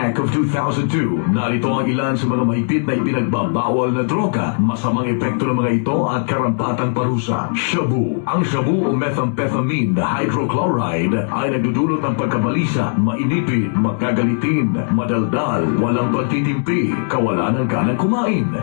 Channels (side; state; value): right; silent; digital silence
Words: of 2002, narito ang ilan sa mga mahigpit na ipinagbabawal na droga, masamang epekto ng mga ito at karampatang parusa. Shabu. Ang shabu o methamphetamine hydrochloride ay nagdudulot ng pagkabalisa, mainipid, magkagalitin, madaldal, walang pagtitimpi, kawalan ng ganang kumain.